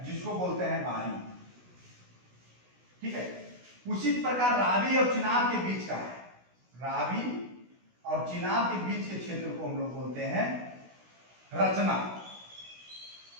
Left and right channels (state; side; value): late; left; 16 ms